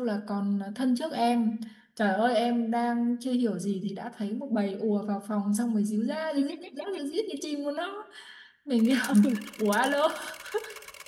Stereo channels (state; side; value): identical; both; correlation 1.00